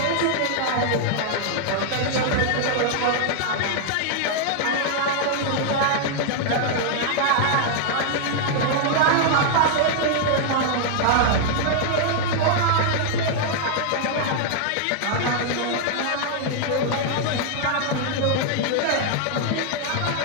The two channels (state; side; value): different; both; correlation 0.00